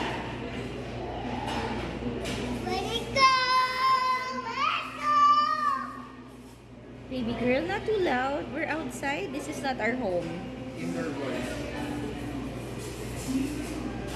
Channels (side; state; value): both; identical; correlation 1.00